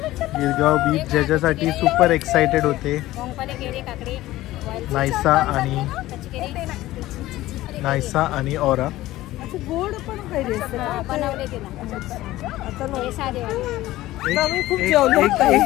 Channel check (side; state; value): right; quieter; 16.3 dB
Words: गिरगाव बीच ज्याच्यासाठी सुपर एक्साइटेड होते नायसा आणि ऑरा. गोड पण पाहिजे खूप जेवलो.